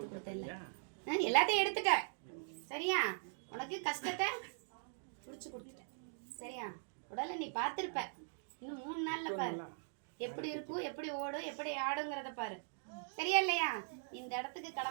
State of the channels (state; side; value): silent; left; digital silence